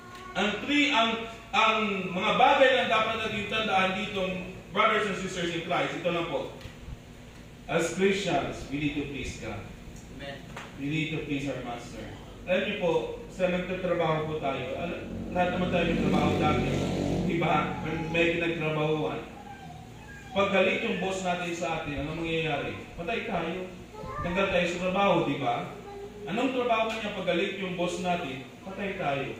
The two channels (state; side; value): identical; both; correlation 1.00